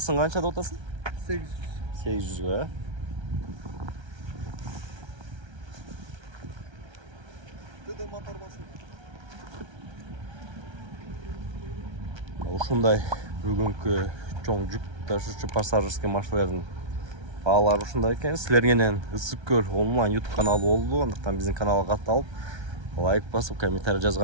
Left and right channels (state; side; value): late; left; 1.3 ms